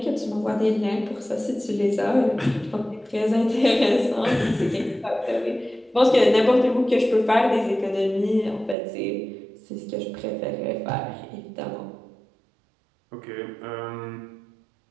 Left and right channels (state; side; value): drops out; left; at 8.8 s